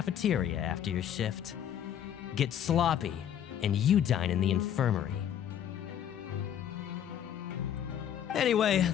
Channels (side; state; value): right; quieter; 9.8 dB